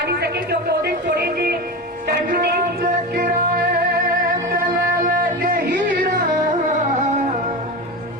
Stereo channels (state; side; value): normal; both; correlation 0.24